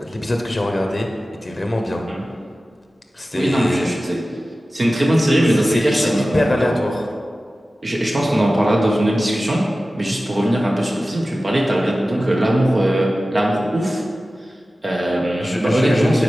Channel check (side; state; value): both; normal; correlation 0.95